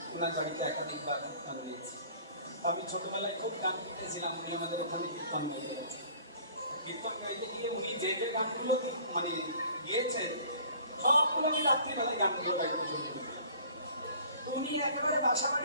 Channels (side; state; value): both; inverted; correlation -0.50